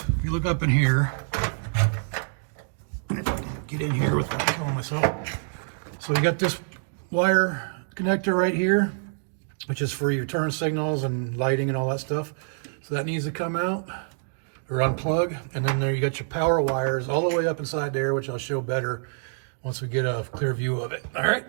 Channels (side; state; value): left; silent; digital silence